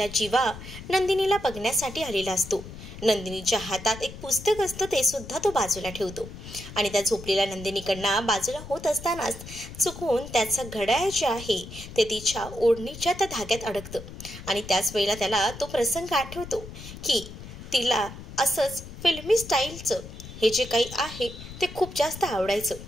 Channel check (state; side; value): noise; left; rumble, 13 dB below the sound